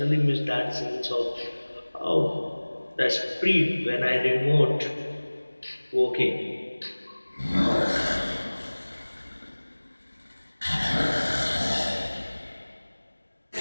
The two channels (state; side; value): inverted; both; correlation -1.00